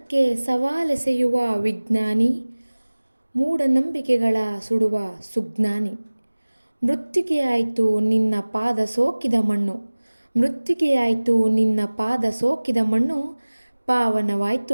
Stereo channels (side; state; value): both; inverted; correlation -1.00